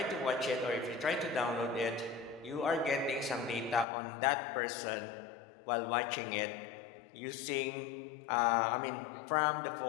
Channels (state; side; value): drops out; right; at 3.9 s